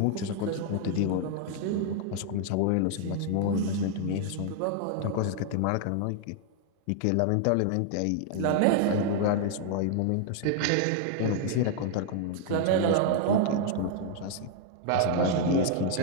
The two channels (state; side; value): different; both; correlation 0.00